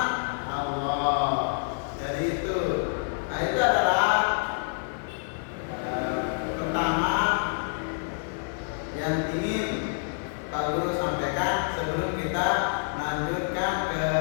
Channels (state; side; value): silent; right; digital silence